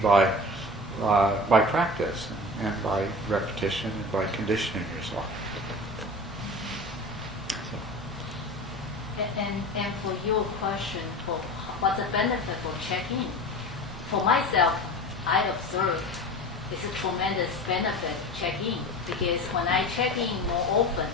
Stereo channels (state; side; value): normal; both; correlation 0.34